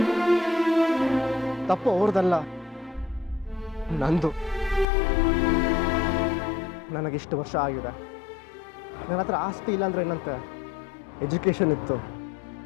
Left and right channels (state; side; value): drops out; right; at 4.9 s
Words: ತಪ್ಪು ಅವ್ರದಲ್ಲ, ನಂದು. ನನಗಿಷ್ಟು ವರ್ಷ ಆಗಿದೆ. ನನ್ನ ಹತ್ರ ಆಸ್ತಿ ಇಲ್ಲ ಅಂದರೆ ಏನಂತೆ, ಎಜುಕೇಷನ್ ಇತ್ತು,